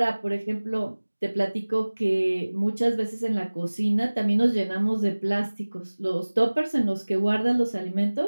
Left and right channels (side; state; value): both; inverted; correlation -1.00